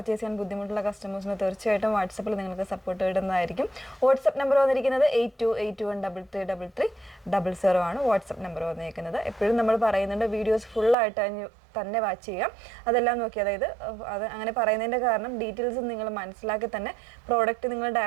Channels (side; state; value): left; drops out; at 11.0 s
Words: ചെയ്യാൻ ബുദ്ധിമുട്ടുള്ള കസ്റ്റമേഴ്സിന് തീർച്ചയായിട്ടും വാട്സപ്പിൽ നിങ്ങൾക്ക് സപ്പോർട്ട് ഇടുന്നതായിരിക്കും. വാട്സപ്പ് നമ്പർ വന്നിരിക്കുന്നത് 8281333300 ആണ് വാട്സപ്പ് നമ്പർ വന്നിരിക്കുന്നത്. എപ്പോഴും നമ്മൾ പറയുന്നുണ്ട് വീഡിയോസ് ഫുള്ളായിട്ട് തന്നെ വാച്ച് ചെയ്യാം. അതെല്ലാം നോക്കി, അതായത് അത് അങ്ങനെ പറയുന്നതിൻ്റെ കാരണം ഡീറ്റെയിൽസ് നിങ്ങൾ മനസ്സിലാക്കി തന്നെ പ്രോഡക്റ്റ് നിങ്ങൾ